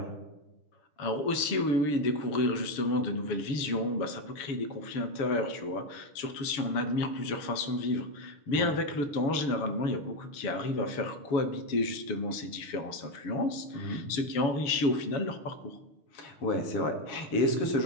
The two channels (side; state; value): right; late; 7.1 ms